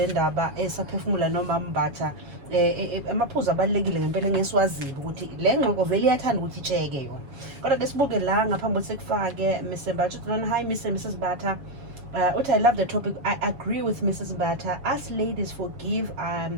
ndaba esaphefumula noma Mbatha amaphuzu abalekile ngempela ngesiwazile ukuthi le ngxoxo vele iyathanda ukuthi itsheke yona. Kodwa ke sibuke la ngaphambi kokuthi sekufake Mr. Mbatha. Hi Mrs. Mbatha. I love the topic. I agree with Mrs. Mbatha. Us ladies forgive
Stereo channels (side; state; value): left; late; 7.1 ms